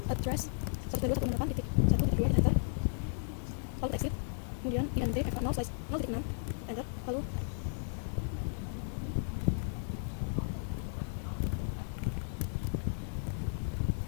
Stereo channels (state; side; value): silent; right; 55 dB below the other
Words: address 192.168.1.2 enter, lalu exit, kemudian INT FA 0 slice 0.6 enter, lalu